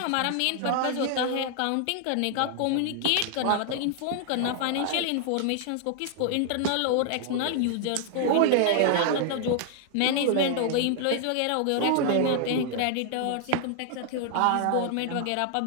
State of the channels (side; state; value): both; different; correlation 0.00